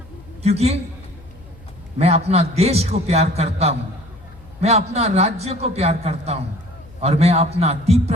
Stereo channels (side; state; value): left; noise; hum, 22 dB below the sound